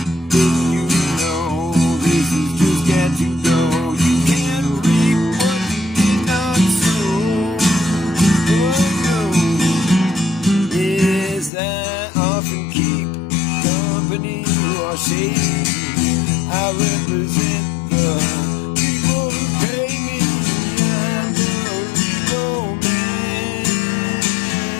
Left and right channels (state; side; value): drops out; right; at 11.5 s